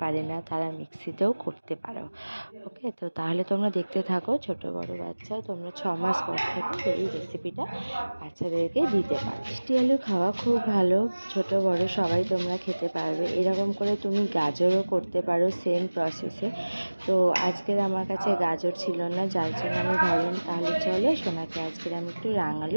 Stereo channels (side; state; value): both; inverted; correlation -1.00